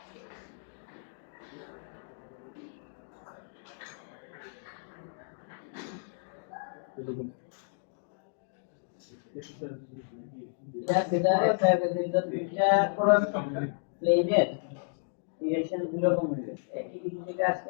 এটা একটা দুইটা প্লেনের ডিরেকশন গুলো কম হয়ে গেছে, একই দিক থেকে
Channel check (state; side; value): silent; right; digital silence